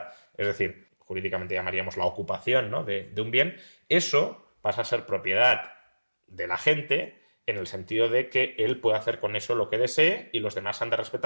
Es decir, jurídicamente llamaríamos la ocupación, ¿no? de un bien. Eso pasa a ser propiedad de la gente en el sentido de que él puede hacer con eso lo que desee y los demás han de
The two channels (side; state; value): both; inverted; correlation -1.00